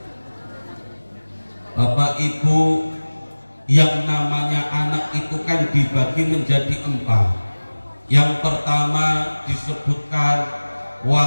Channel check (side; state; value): both; inverted; correlation -1.00